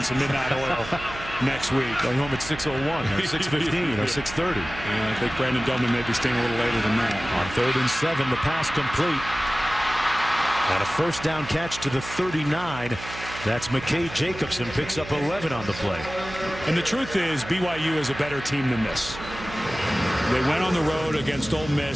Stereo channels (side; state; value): right; noise; hum, 12 dB below the sound